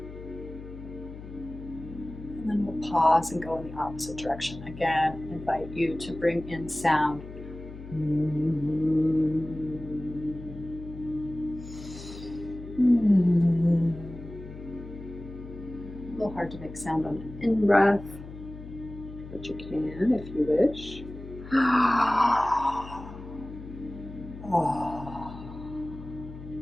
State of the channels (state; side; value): noise; left; hum, 13 dB below the sound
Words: And then we'll pause and go in the opposite direction. Again, invite you to bring in sound. A little hard to make sound on an in-breath, but you can if you wish.